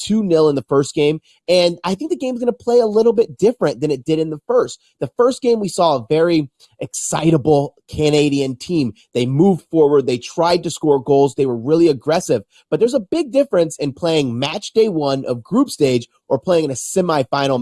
2-0 in the first game, and I think the game's going to play a little bit different than it did in the first. The first game, we saw a very excitable Canadian team. They moved forward. They tried to score goals. They were really aggressive, but there's a big difference in playing match day one of group stage or playing in a semifinal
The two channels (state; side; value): identical; both; correlation 1.00